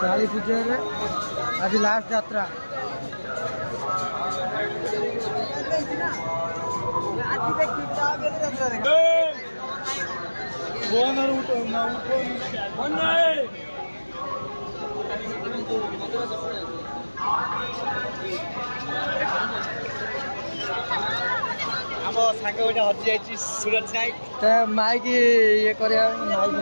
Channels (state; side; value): inverted; both; correlation -1.00